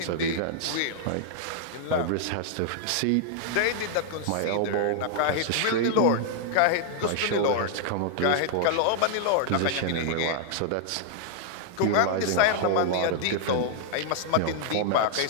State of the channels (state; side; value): different; both; correlation -0.01